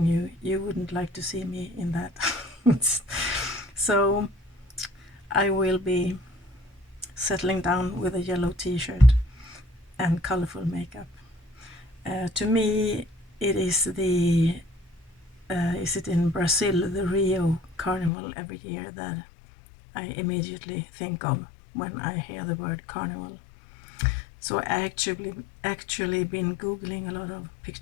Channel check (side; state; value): right; drops out; at 18.1 s